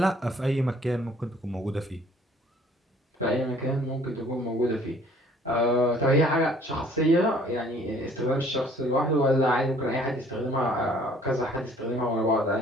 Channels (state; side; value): normal; both; correlation 0.57